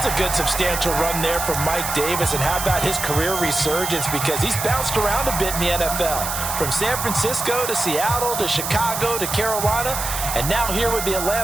a good substantial run there from Mike Davis. And how about his career resurgence? Because he's bounced around a bit in the NFL. From San Francisco to Seattle to Chicago to Carolina. And now here with the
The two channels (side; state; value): right; noise; hiss, 4 dB below the sound